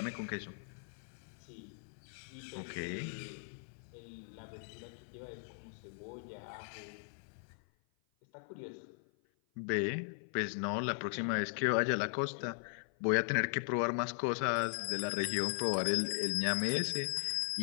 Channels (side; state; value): right; silent; 52 dB below the other